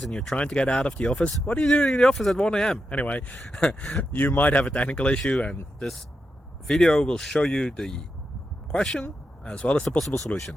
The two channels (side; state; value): both; normal; correlation 0.87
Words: and you're trying to get out of the office. What are you doing in the office at 1 a.m.? Anyway, you might have a technical issue and this video will show you the question as well as the possible